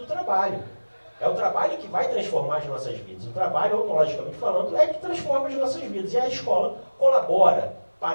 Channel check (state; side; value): inverted; both; correlation -1.00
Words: trabalho. É o trabalho que vai transformar as nossas vidas. O trabalho, ontologicamente falando, é que transforma as nossas vidas. E a escola colabora